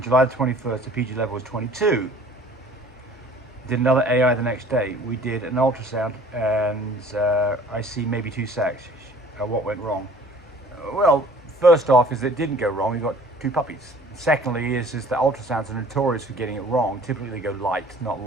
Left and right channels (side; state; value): both; normal; correlation 0.51